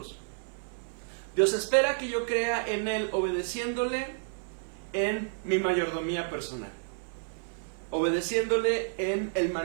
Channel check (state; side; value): silent; left; 58 dB below the other